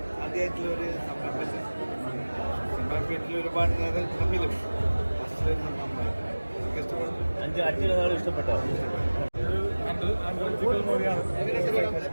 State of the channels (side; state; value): both; inverted; correlation -1.00